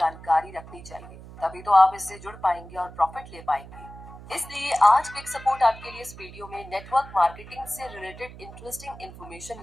रखनी चाहिए, तभी तो आप इससे जुड़ पाएंगे और प्रॉफिट ले पाएंगे। इसलिए आज क्विक सपोर्ट आपके लिए इस वीडियो में नेटवर्क मार्केटिंग से रिलेटेड इंटरेस्टिंग इंफॉर्मेशन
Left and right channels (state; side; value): noise; right; hum, 16 dB below the sound